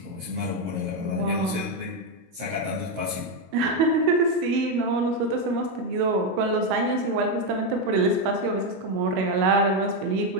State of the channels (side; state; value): left; late; 17 ms